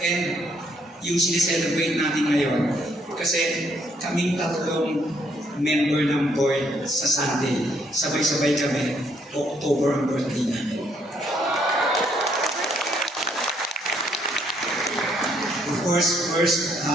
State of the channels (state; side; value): normal; both; correlation 0.70